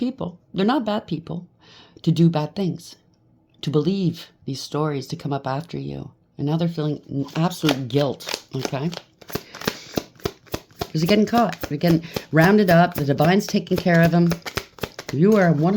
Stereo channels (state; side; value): identical; both; correlation 1.00